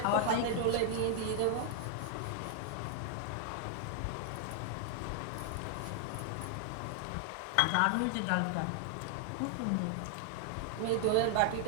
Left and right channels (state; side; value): different; both; correlation 0.00